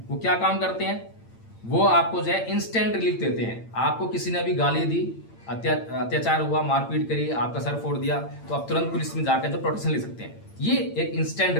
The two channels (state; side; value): late; right; 8.8 ms